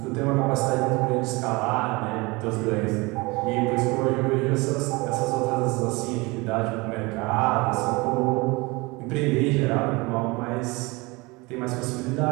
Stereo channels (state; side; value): quieter; left; 24.9 dB